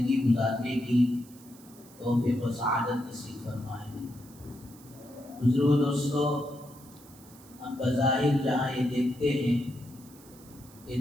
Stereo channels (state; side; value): noise; right; hiss, 23 dB below the sound